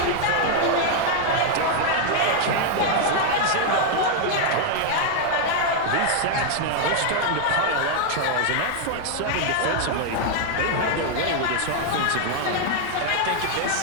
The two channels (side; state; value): both; different; correlation 0.00